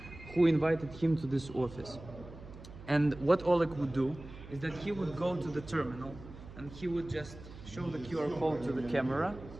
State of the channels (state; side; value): noise; right; hum, 16 dB below the sound